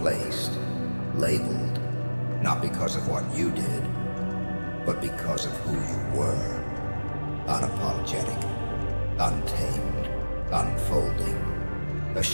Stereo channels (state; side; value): inverted; both; correlation -1.00